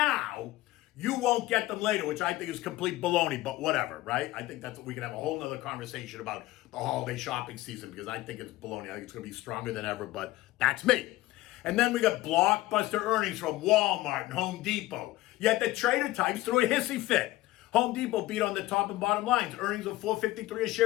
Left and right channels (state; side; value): quieter; right; 17.6 dB